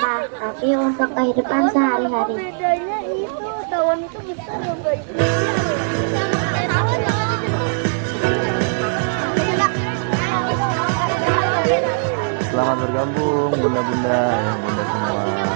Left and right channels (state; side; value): silent; left; digital silence